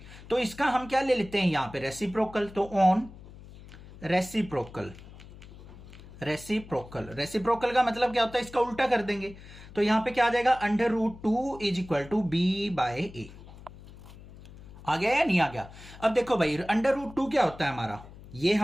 तो इसका हम क्या ले लेते हैं यहां पे, रेसिप्रोकल। तो ऑन रेसिप्रोकल का मतलब क्या होता है, इसका उल्टा कर देंगे। तो यहां पे क्या आ जाएगा, √2 इज इक्वल टू b/a। आ गया या नहीं आ गया। अब देखो भाई √2 क्या होता है हमारा, ये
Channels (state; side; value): noise; left; hum, 18 dB below the sound